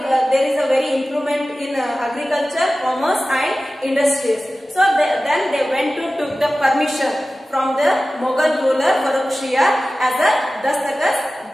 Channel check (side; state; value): both; normal; correlation 0.96